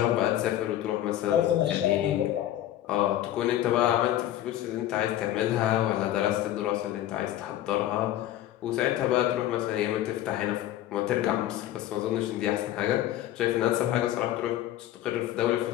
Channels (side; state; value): right; quieter; 13.1 dB